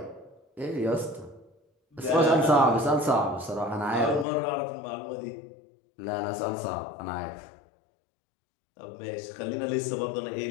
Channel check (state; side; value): drops out; right; at 4.2 s